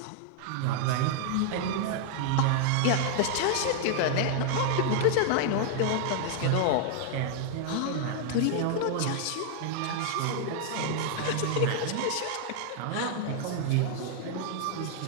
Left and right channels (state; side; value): different; both; correlation 0.00